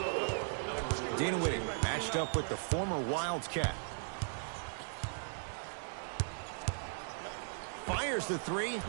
Dinwiddie matched up with the former Wildcat. Fires the 3.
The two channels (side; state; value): left; silent; digital silence